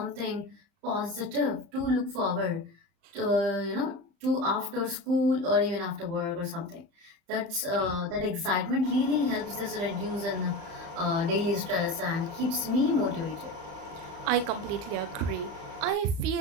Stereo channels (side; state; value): left; late; 35 ms